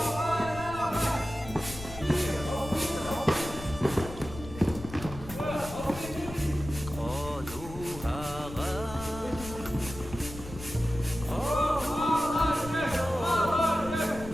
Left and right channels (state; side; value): noise; left; rumble, 12 dB below the sound